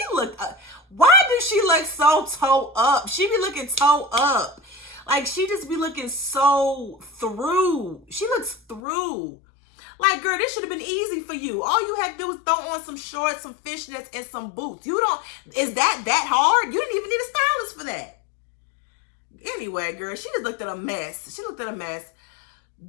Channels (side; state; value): right; drops out; at 8.8 s